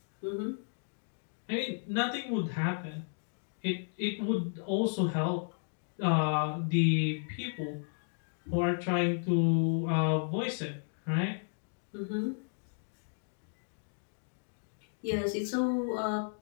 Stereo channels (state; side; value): silent; right; digital silence